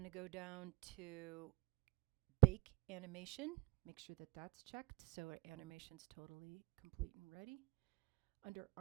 to go down to bake animation, make sure that that's checked so our animation's totally complete and ready. Under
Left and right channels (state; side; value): quieter; left; 24.9 dB